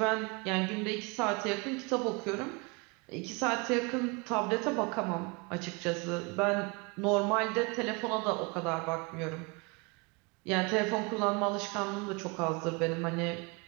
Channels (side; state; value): left; quieter; 29.1 dB